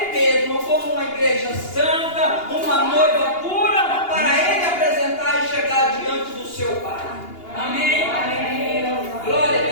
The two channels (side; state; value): right; late; 2.8 ms